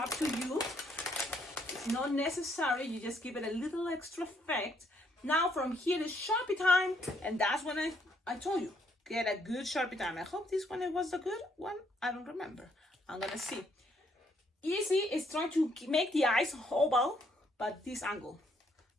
to you. It's not necessary, you just give it a little extra effect. Now from here is Sharpie time, and that's when I told you, get a good Sharpie time. I hope this one was the good one. I don't remember. I'm gonna see. Easy is trying to make the eyes oval, but this angle.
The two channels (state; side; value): normal; both; correlation 0.71